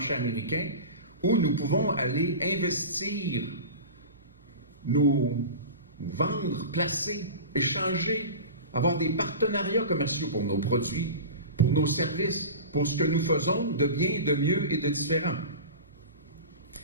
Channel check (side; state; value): both; inverted; correlation -0.31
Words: américain, où nous pouvons aller investir, nous vendre, placer, échanger, avoir des partenariats commerciaux pour nos produits, pour nos services, pour ce que nous faisons de bien, de mieux et de différent.